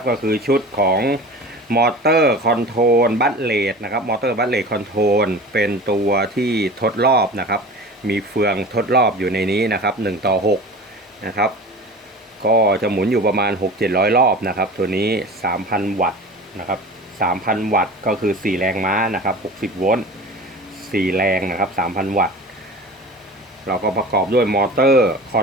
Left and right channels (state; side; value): normal; both; correlation 0.36